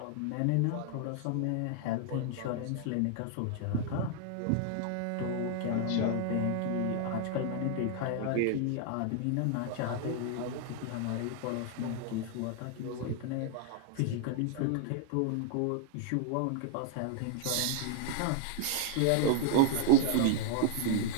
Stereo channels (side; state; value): both; different; correlation 0.00